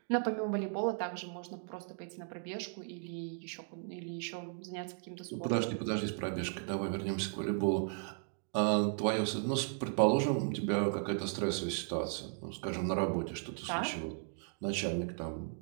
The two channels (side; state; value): left; silent; 54 dB below the other